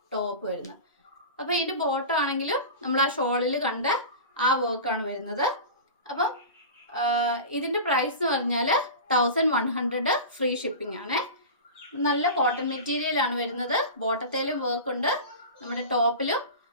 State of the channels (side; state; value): both; inverted; correlation -0.30